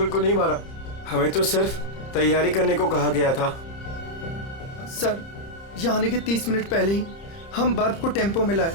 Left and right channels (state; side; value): late; right; 30 ms